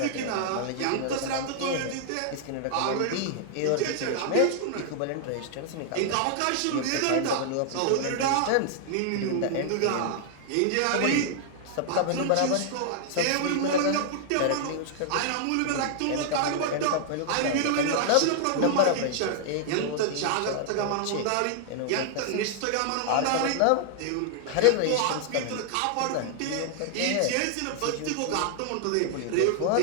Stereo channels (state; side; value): different; both; correlation 0.00